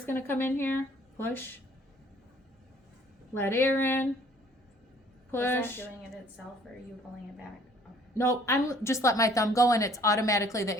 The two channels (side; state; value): both; normal; correlation 0.57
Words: going to come in here. Push. Let air in. Push. Is that doing it itself, or are you pulling it back? Okay. No, I'm just let my thumb go, and it's automatically the